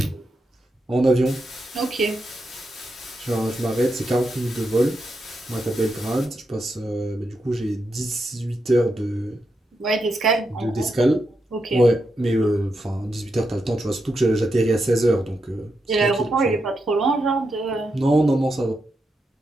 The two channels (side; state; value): both; normal; correlation 0.85